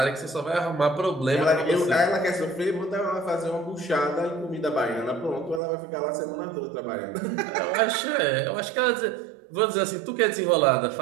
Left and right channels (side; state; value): left; drops out; at 5.6 s